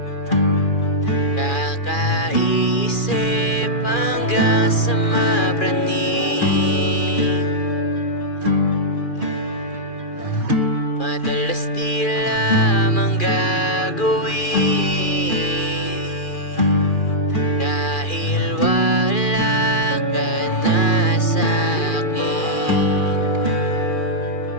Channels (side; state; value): right; late; 2.4 ms